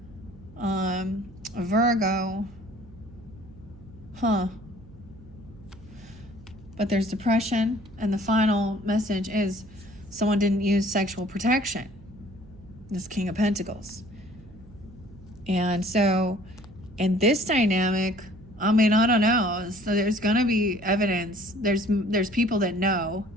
A Virgo. But there's depression, and the final message is someone didn't use sexual protection. This King of Pentacles. And so in this dynamic, I don't know. So there's going to be evidence. There's people that know.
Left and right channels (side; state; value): right; noise; hum, 21 dB below the sound